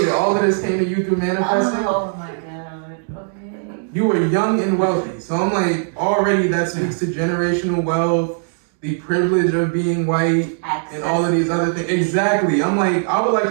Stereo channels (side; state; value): left; silent; digital silence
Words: that all of this came to you through manifesting? Oh my god, okay. You were young and wealthy. So I'm like, already that speaks to generational wealth, the privilege of being white, and all of these other things. Exactly. I'm like, I would like